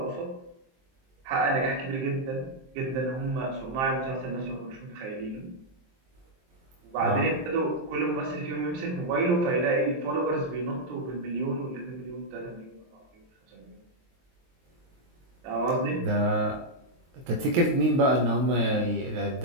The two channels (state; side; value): late; left; 23 ms